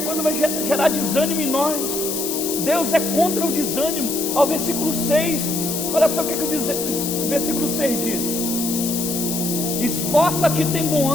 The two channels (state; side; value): noise; left; hiss, 3 dB below the sound